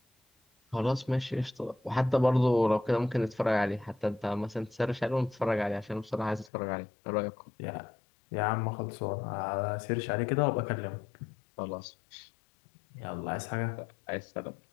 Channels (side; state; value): right; drops out; at 6.5 s